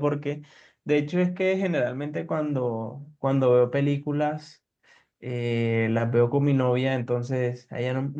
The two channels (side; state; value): both; identical; correlation 1.00